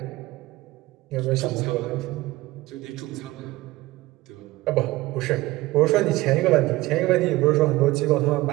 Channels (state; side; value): quieter; left; 18.8 dB